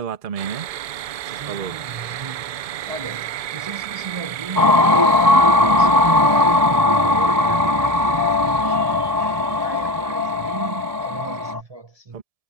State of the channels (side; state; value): left; late; 1.7 ms